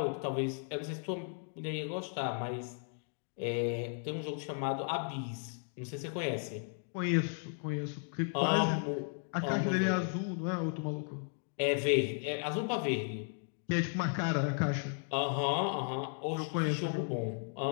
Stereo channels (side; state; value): right; silent; 54 dB below the other